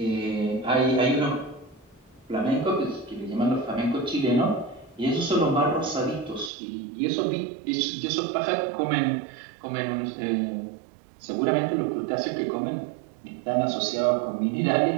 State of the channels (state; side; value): drops out; left; at 6.5 s